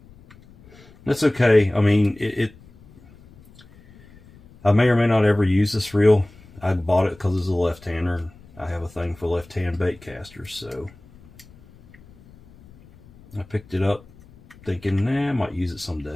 That's okay. I mean, I may or may not ever use this reel. I bought it because it's a left-hander, and I have a thing for left-hand bait casters, so I picked it up thinking, nah, I might use it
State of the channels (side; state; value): left; noise; rumble, 25 dB below the sound